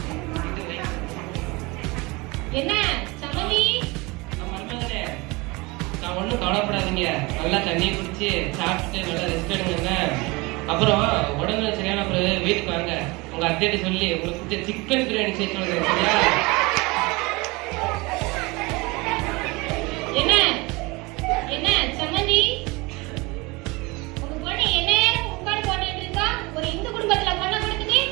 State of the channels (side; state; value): left; quieter; 24.7 dB